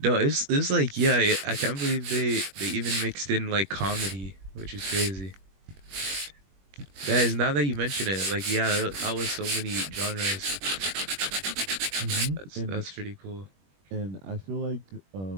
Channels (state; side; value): late; left; 21 ms